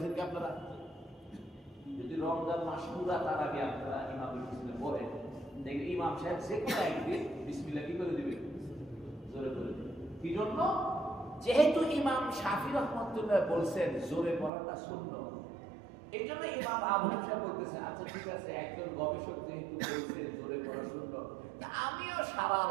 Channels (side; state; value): left; drops out; at 14.5 s